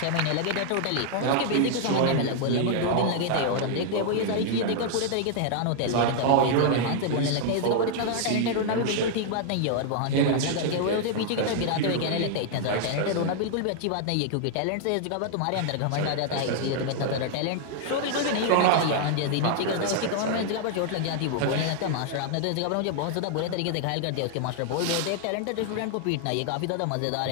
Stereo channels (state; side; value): different; both; correlation 0.00